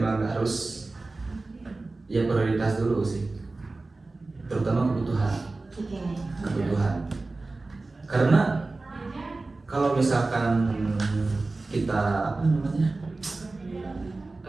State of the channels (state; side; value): quieter; left; 3.4 dB